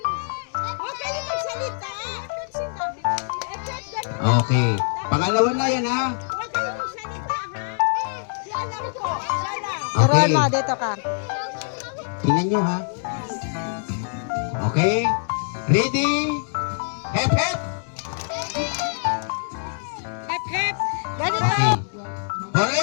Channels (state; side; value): silent; right; digital silence